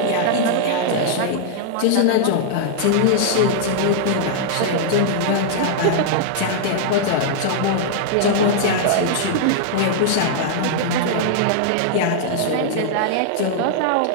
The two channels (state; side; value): different; both; correlation -0.01